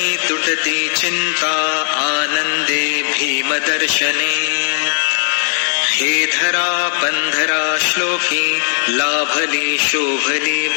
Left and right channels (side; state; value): right; silent; digital silence